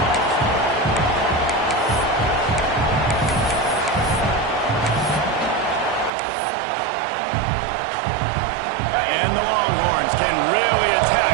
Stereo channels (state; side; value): drops out; left; at 6.1 s